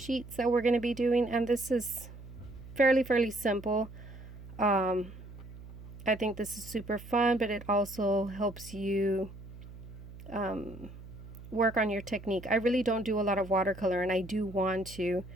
that we're going to be doing. And this is fairly simple. I think this is super fun, but it also helps you work on your technique. I really don't do a lot of watercolor, and I do want to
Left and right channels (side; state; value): right; noise; hum, 15 dB below the sound